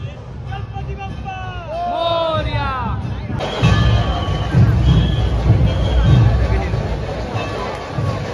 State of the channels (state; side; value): identical; both; correlation 1.00